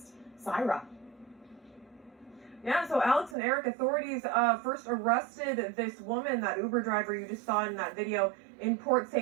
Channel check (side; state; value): left; drops out; at 3.4 s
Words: Syra. Yeah, so Alex and Eric, authorities first arrested this woman, that Uber driver you just saw in that video, in Port